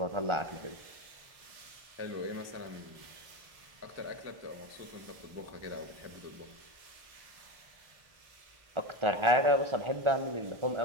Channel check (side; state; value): left; late; 1.4 ms